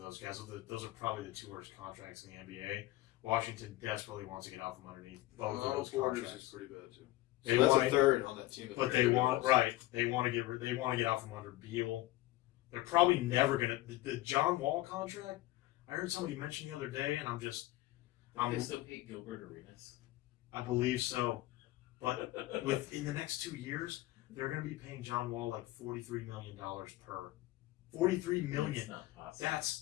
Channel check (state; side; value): quieter; right; 17.3 dB